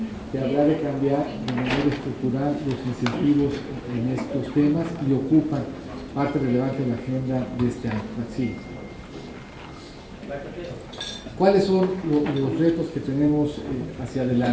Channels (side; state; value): both; identical; correlation 1.00